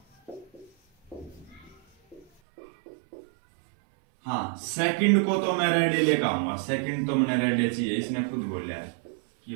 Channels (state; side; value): drops out; left; at 2.2 s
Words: हाँ, सेकंड को तो मैं रेड लेकर आऊंगा, सेकंड तो मैंने रेड चाहिए, इसने खुद बोला है कि